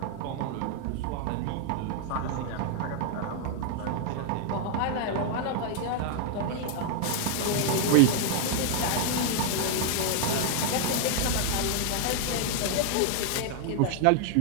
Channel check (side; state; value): both; different; correlation 0.00